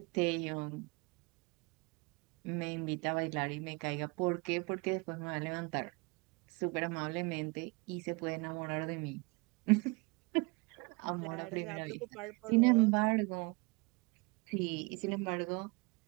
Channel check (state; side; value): quieter; left; 28.3 dB